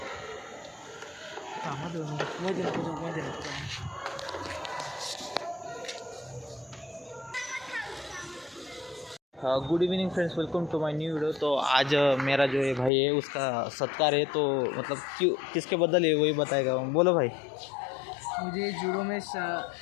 Good evening friends, welcome to my new video. तो आज मेरा जो ये भाई है उसका सत्कार है. तो मतलब क्यों किसके बदल है वही बताएगा. बोलो भाई. मुझे जूडो में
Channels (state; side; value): drops out; right; at 12.9 s